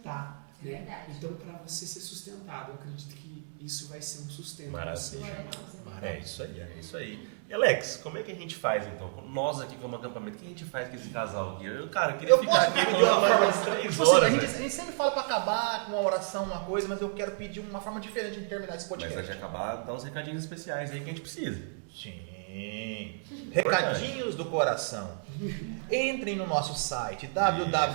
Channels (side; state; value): left; silent; digital silence